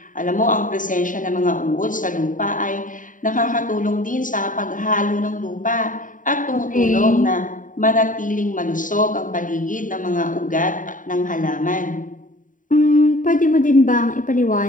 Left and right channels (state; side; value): late; right; 0.38 ms